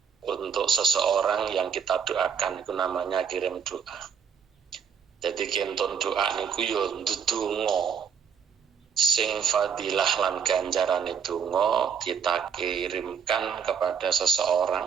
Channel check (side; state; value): left; quieter; 7.1 dB